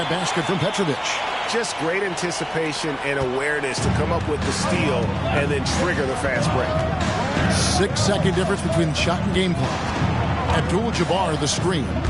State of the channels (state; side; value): identical; both; correlation 1.00